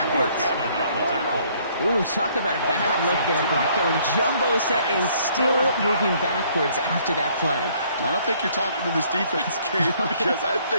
Ooh, talk about a bad look there, Brock. Going jumbo set and still moving backwards after that play. I don't think you're talking to this defense, Kate, because I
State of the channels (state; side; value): inverted; both; correlation -0.63